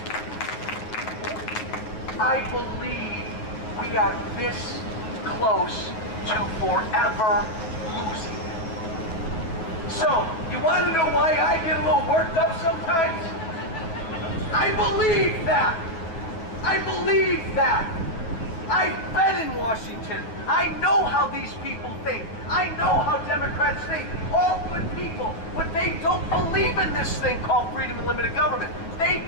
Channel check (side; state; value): right; late; 9.1 ms